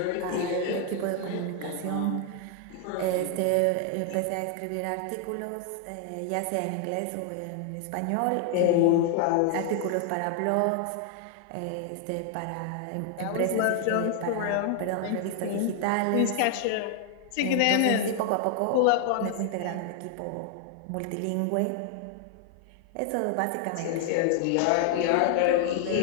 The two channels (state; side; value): different; both; correlation 0.00